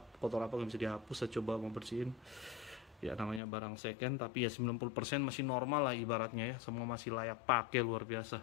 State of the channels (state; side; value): drops out; right; at 3.4 s